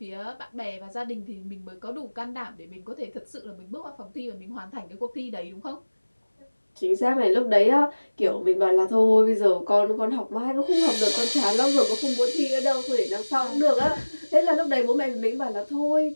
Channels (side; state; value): both; inverted; correlation -1.00